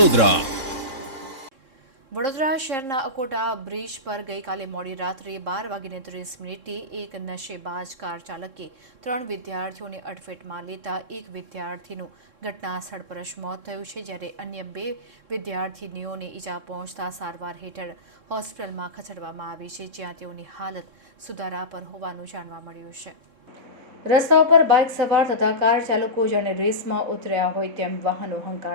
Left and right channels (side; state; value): left; late; 3.7 ms